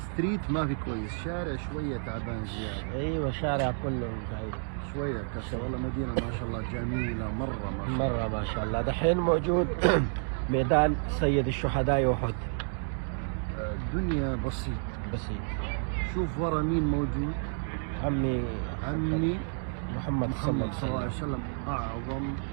ما في كويس، شارع شوية تعبان زيادة. ايوه شارع كله زعيم شوية كسر. والله مدينة ما شاء الله جميلة مرة ما شاء الله. مرة ما شاء الله. دحين موجود ميدان سيد الشهداء أحد. الدنيا بسيط. بسيط. شوف ورا مين موجود؟ عمي محمد صلى الله عليه وسلم، أعظم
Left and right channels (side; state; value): left; silent; 57 dB below the other